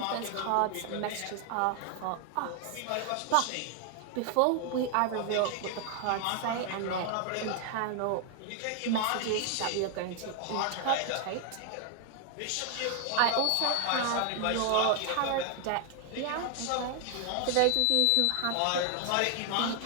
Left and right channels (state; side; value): different; both; correlation 0.00